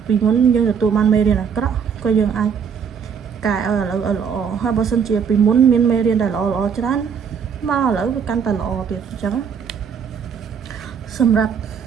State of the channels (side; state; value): left; quieter; 6.9 dB